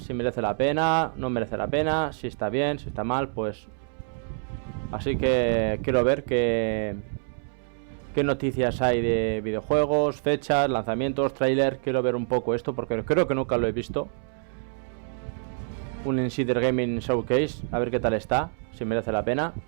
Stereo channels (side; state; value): left; silent; 60 dB below the other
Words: si merece la pena, no merece la pena, si está bien, si está mal, pues... Así que quiero ver qué noticias hay de videojuegos, fechas, lanzamientos, tráiler. Quiero ver un poco esto porque creo que nunca lo he visto. Un Insider Gaming Showcase, a ver qué tal está, si merece la pena.